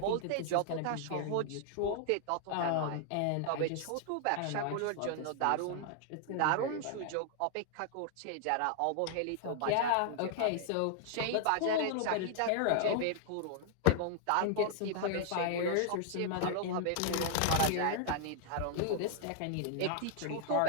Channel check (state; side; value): different; both; correlation 0.00